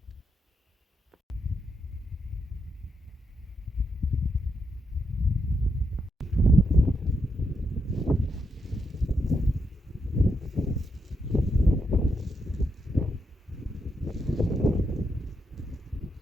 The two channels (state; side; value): normal; both; correlation 0.81